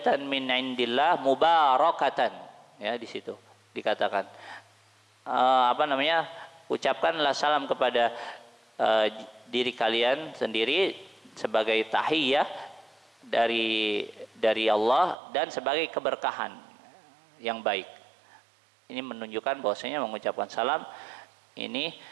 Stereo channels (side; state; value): left; drops out; at 15.2 s